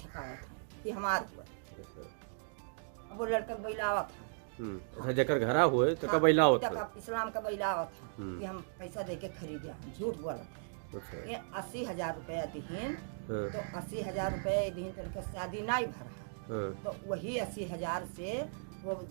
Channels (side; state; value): left; silent; digital silence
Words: था कि हमारा। अब वो लड़का बैलावा था। जकर घरा हुए तो का बैला होता है। इस्लाम का बैलावा था कि हम पैसा देके खरीदे, झूठ बोला। ये 80,000 रुपया दीन, तो 80,000 रुपये दीन तो उनका शादी नहीं भरा। तो वही 80,000 से वो